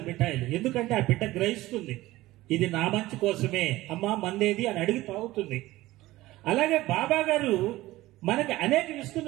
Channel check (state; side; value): quieter; left; 17.5 dB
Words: మిఠాయిలు, ఎందుకంటే ఆ బిడ్డ గ్రహిస్తుంది ఇది నా మంచి కోసమే, అమ్మా మందేది అని అడిగి తాగుతుంది. అలాగే బాబా గారు మనకి అనేక